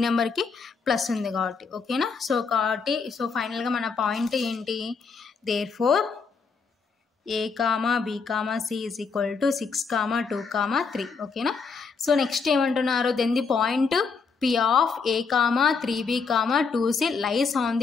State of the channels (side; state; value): right; quieter; 5.1 dB